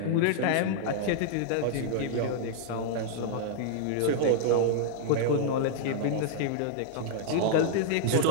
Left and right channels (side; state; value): both; different; correlation -0.01